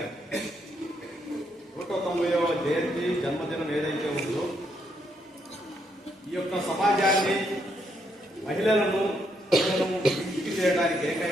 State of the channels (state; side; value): normal; both; correlation 0.75